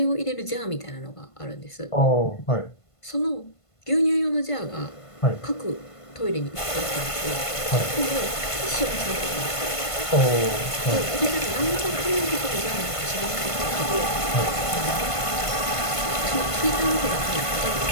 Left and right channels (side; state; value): right; late; 1.5 ms